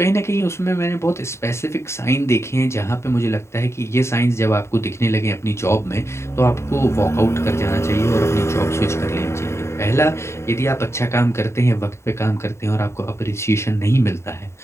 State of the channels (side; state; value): right; late; 0.13 ms